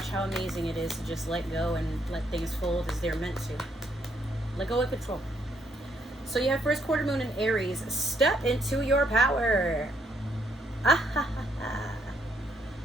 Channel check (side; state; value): both; normal; correlation 0.72